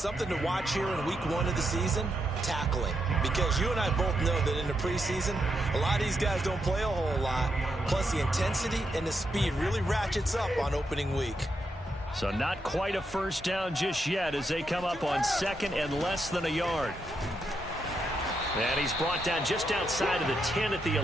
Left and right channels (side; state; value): both; normal; correlation 0.82